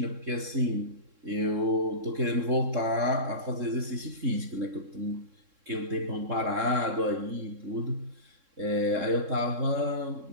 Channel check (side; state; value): left; late; 3.7 ms